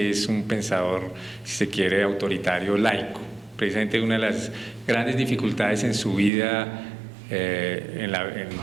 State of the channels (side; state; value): left; drops out; at 6.3 s